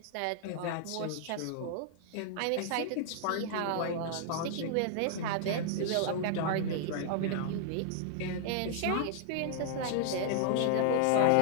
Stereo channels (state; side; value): different; both; correlation -0.01